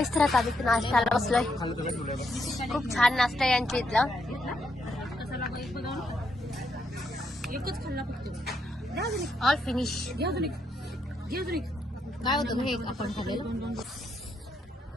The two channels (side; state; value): both; normal; correlation 0.78